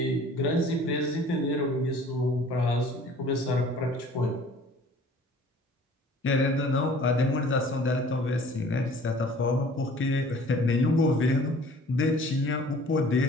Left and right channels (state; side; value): normal; both; correlation 0.50